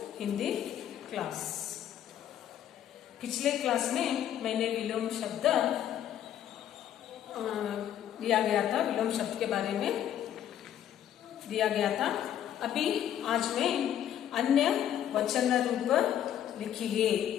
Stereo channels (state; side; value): quieter; right; 10.6 dB